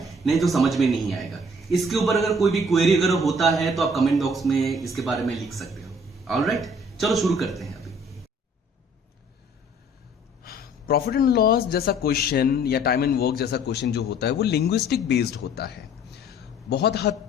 नहीं तो समझ में नहीं आएगा। इसके ऊपर अगर कोई भी क्वेरी अगर होता है तो आप कमेंट बॉक्स में इसके बारे में लिख सकते हो। ऑलराइट, चलो शुरू करते हैं। अभी प्रॉफिट एंड लॉस जैसा क्वेश्चन या टाइम एंड वर्क जैसा क्वेश्चन जो होता है वो लिंग्विस्टिक बेस्ड होता है। बहुत हद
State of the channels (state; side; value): normal; both; correlation 0.56